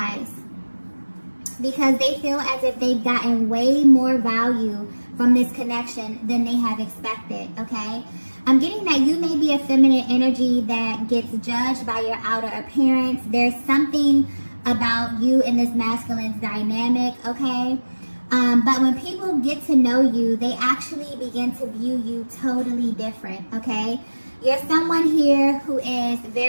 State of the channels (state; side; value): inverted; both; correlation -1.00